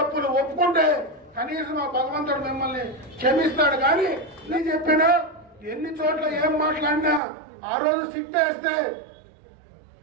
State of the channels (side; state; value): left; drops out; at 7.2 s